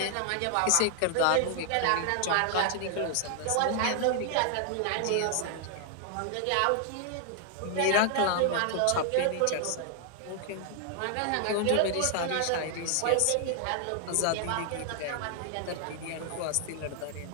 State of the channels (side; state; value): both; different; correlation 0.00